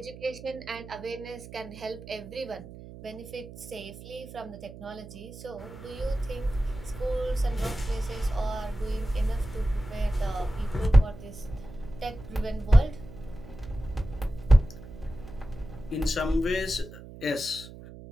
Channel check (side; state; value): right; noise; hum, 15 dB below the sound